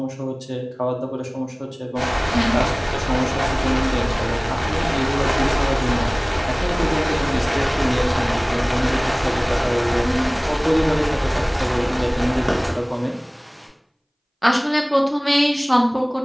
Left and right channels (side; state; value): both; identical; correlation 1.00